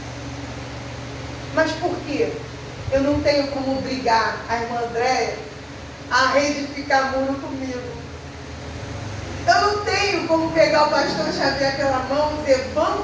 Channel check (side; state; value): both; identical; correlation 1.00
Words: Mas por quê? Eu não tenho como obrigar a irmã Andréia a reedificar muro comigo. Eu não tenho como pegar o pastor Xavier pela mão e dizer,